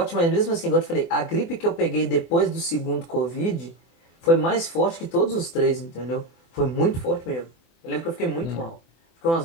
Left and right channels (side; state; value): right; late; 24 ms